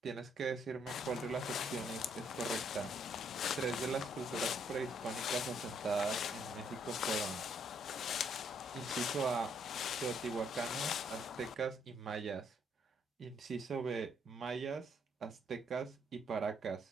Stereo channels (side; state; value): both; normal; correlation 0.69